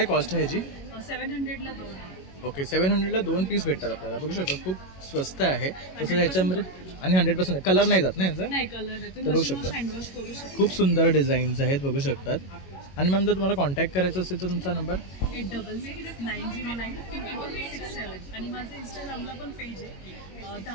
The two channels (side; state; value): right; late; 22 ms